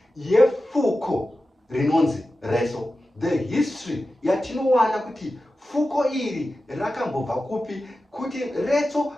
yefuko rinonzi retso. The history yatinowana kuti fuko iri rakambobva kupi, kuti retso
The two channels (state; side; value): normal; both; correlation 0.93